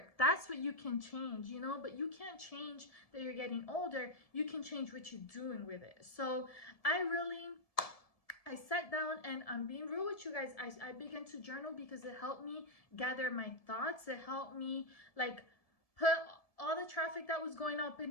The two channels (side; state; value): right; late; 1.7 ms